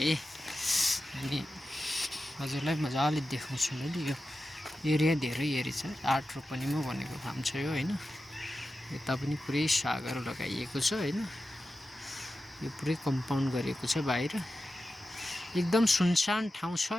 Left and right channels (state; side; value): normal; both; correlation 0.92